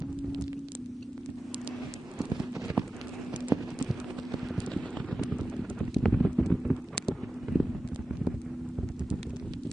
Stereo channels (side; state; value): both; normal; correlation 0.94